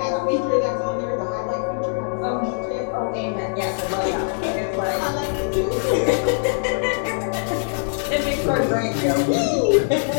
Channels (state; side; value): silent; right; digital silence